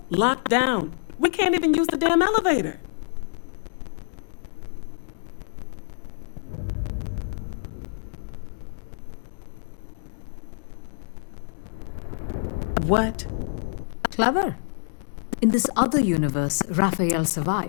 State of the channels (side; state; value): right; silent; digital silence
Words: locked down. We can't even use the damn elevator. What? Clever. In this other universe, Raphael